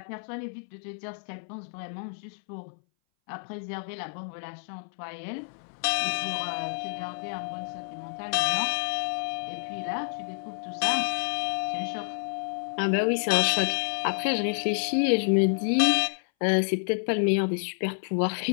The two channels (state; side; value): silent; right; 59 dB below the other